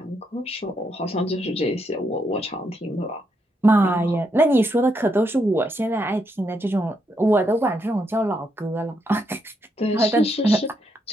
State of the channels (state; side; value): normal; both; correlation 0.78